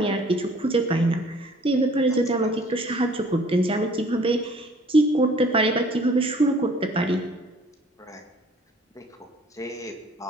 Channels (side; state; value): both; normal; correlation 0.54